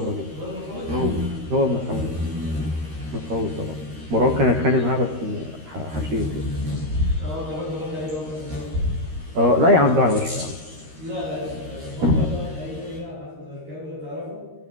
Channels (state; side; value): late; left; 13 ms